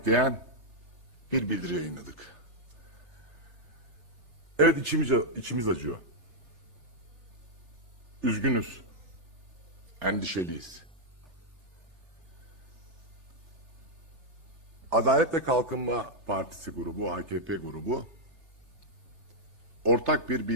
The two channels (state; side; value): late; left; 3.3 ms